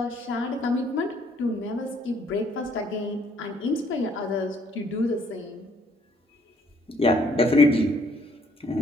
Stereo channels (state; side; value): normal; both; correlation 0.65